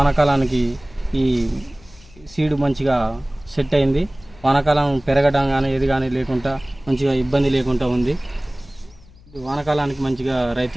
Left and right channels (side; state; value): left; noise; hum, 24 dB below the sound